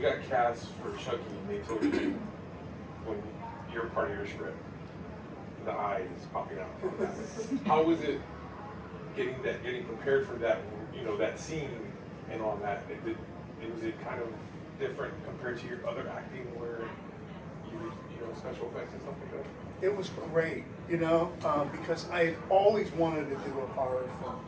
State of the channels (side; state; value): both; identical; correlation 1.00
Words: got cast for Chucky, they told you when you're part of your script, the eye is popping out. How was it getting prepared for that, that scene and all that? Was it kind of different compared to your other acting where special effects and stuff like that? It was great, because I had always wanted to do a horror film.